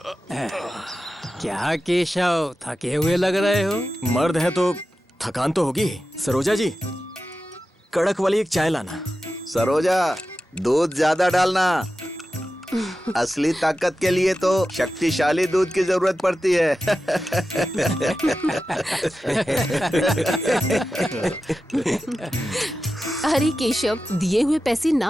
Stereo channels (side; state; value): both; normal; correlation 0.93